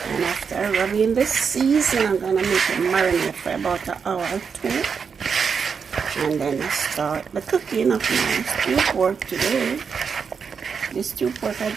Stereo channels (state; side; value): quieter; left; 6.1 dB